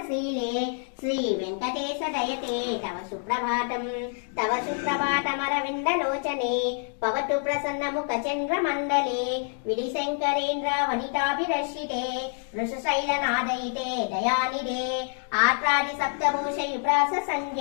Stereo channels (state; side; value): silent; right; 60 dB below the other